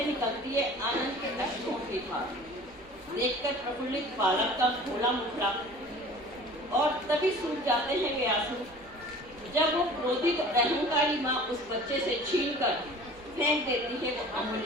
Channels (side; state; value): right; noise; hum, 26 dB below the sound